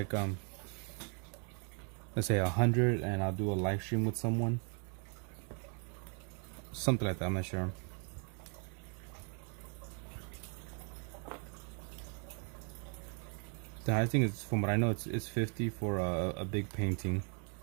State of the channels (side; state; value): left; quieter; 38.9 dB